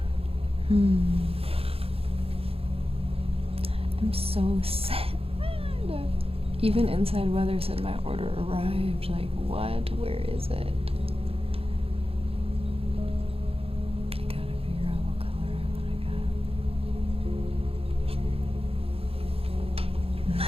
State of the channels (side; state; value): left; late; 0.28 ms